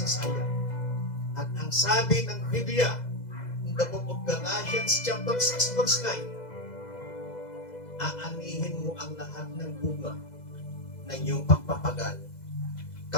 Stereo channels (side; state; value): right; late; 2.0 ms